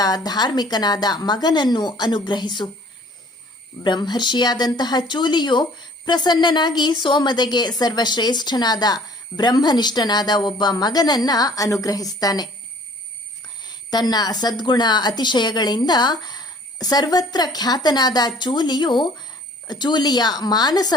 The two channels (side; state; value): both; normal; correlation 0.54